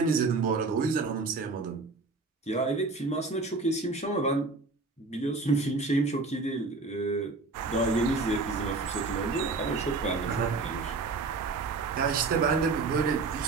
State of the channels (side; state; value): left; quieter; 3.8 dB